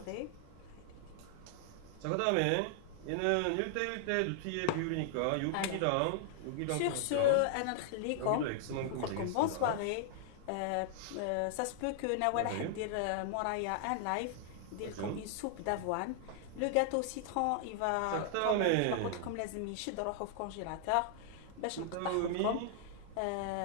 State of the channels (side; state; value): both; different; correlation -0.01